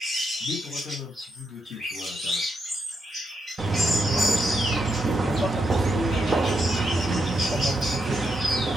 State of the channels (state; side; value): normal; both; correlation 0.82